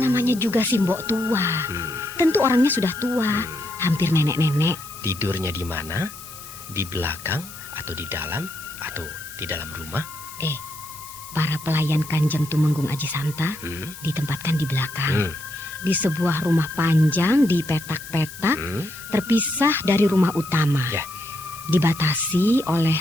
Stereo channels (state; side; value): noise; left; hiss, 15 dB below the sound